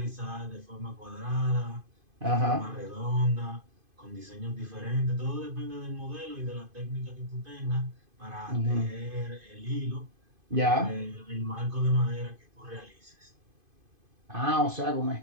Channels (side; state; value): left; late; 2.5 ms